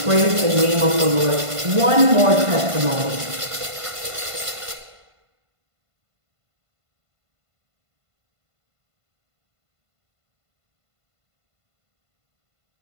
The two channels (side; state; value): left; late; 1.5 ms